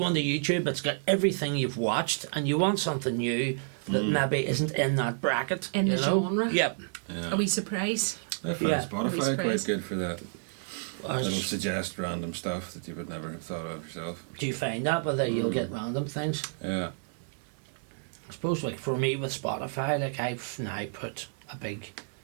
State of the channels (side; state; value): left; silent; digital silence